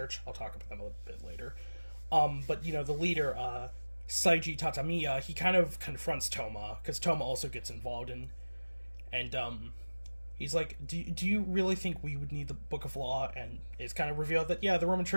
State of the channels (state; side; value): inverted; both; correlation -1.00